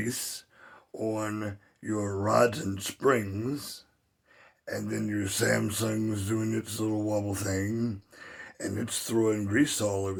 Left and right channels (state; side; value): identical; both; correlation 1.00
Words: on your rods and springs, and then your Samsung's doing its little wobble thing, and it's throwing grease all